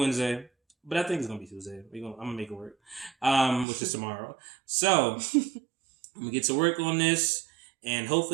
but I think it's gonna be Tuesday. I'm gonna make it work, which is tomorrow. So I'm gonna get to work on this, and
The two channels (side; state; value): left; drops out; at 3.7 s